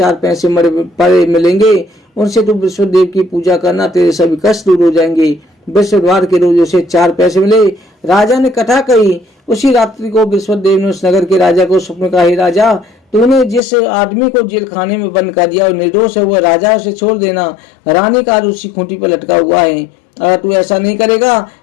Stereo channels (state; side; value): drops out; right; at 13.6 s